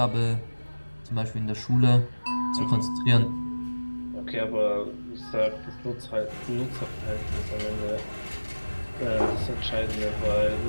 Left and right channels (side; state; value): both; inverted; correlation -1.00